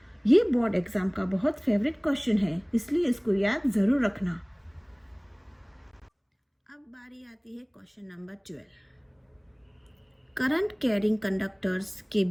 ये बोर्ड एग्जाम का बहुत फेवरेट क्वेश्चन है, इसलिए इसको याद जरूर रखना। अब बारी आती है question number 12, current carrying conductors के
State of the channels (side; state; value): both; identical; correlation 1.00